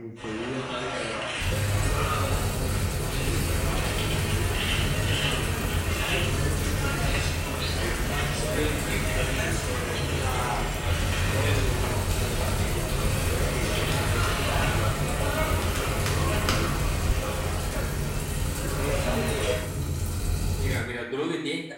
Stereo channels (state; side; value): identical; both; correlation 1.00